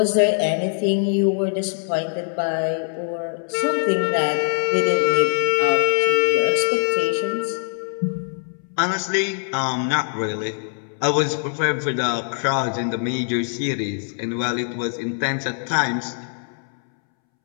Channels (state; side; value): silent; right; 64 dB below the other